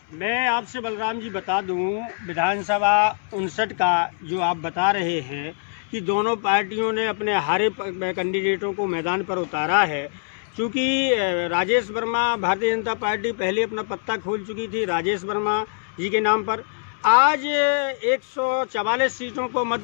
मैं आपसे बलराम जी बता दूं, विधानसभा 59 का जो आप बता रहे हैं कि दोनों पार्टियों ने अपने हारे कैंडिडेटों को मैदान पर उतारा है। क्योंकि राजेश वर्मा, भारतीय जनता पार्टी पहले अपना पत्ता खोल चुकी थी राजेश वर्मा जी के नाम पर। आज 144 सीटों को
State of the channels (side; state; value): right; silent; 63 dB below the other